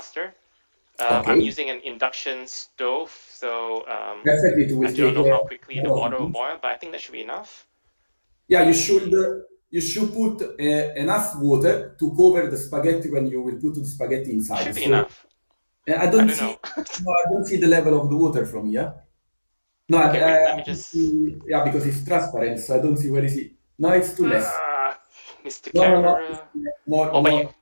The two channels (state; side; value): inverted; both; correlation -1.00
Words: I'm Okay, using an induction stove, so perfect. It I will do not take know how a quickly the couple of water will minutes. boil, but I think that should be enough. Yeah, Okay, you should put enough water to cover the spaghetti when you will put the spaghetti it inside. should be So enough. I I don't don't see know. no, I don't see the level of the water from here. No, Okay, wait, I let me don't just. see, yeah, because it's transparent, so I don't see where is it. No, it's too less. Uh, Mr. No, no, no. Camera. More, Oh, but you more.